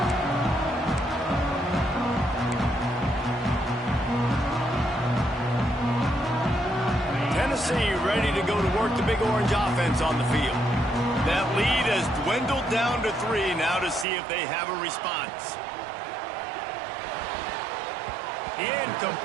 Tennessee ready to go to work the Big Orange offense on the field. That lead has dwindled down to 3 now to see if they have a response.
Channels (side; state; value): left; drops out; at 14.1 s